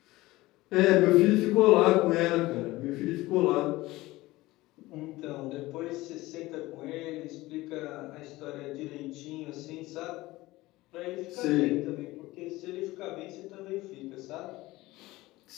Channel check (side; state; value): right; quieter; 19.0 dB